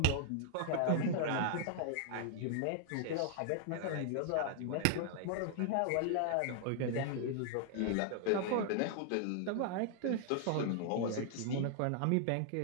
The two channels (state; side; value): different; both; correlation 0.00